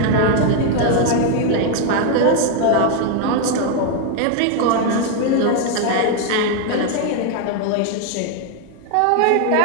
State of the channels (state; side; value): different; both; correlation 0.01